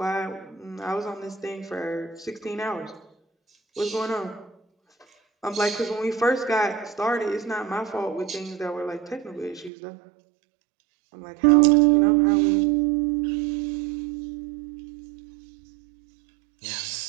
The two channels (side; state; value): left; drops out; at 9.7 s